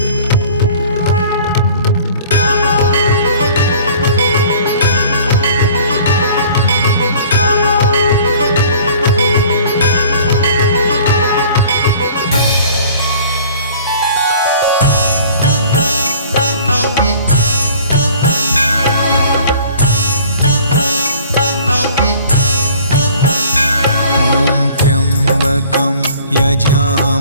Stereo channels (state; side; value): inverted; both; correlation -0.49